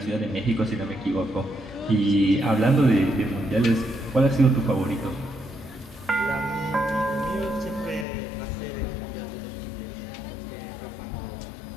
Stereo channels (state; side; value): drops out; right; at 8.1 s